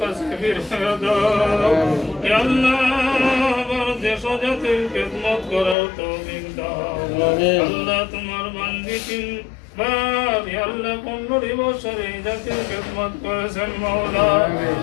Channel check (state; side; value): drops out; right; at 5.8 s